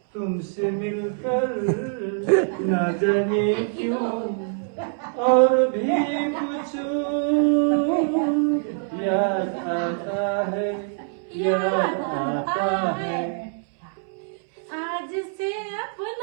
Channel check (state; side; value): silent; left; 62 dB below the other